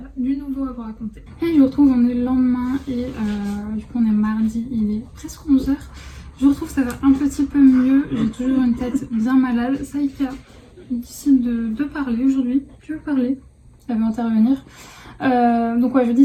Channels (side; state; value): both; identical; correlation 1.00